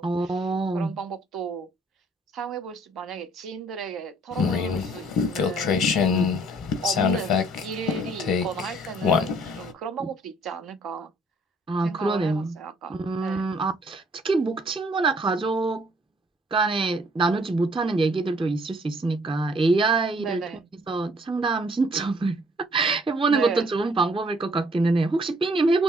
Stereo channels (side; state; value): both; normal; correlation 0.61